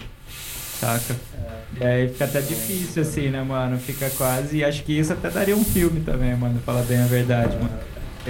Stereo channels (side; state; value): both; identical; correlation 1.00